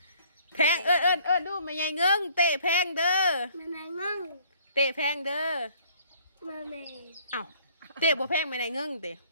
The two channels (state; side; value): inverted; both; correlation -0.59